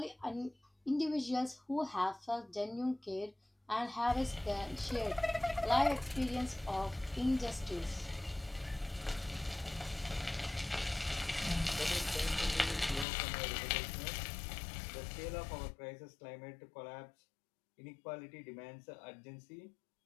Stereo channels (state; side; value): drops out; right; at 13.1 s